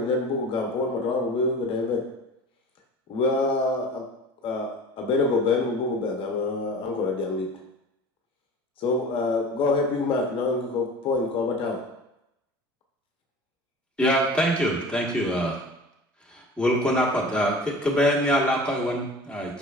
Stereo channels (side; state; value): both; normal; correlation 0.38